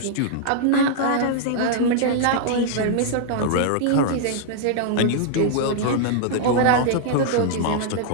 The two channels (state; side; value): different; both; correlation -0.01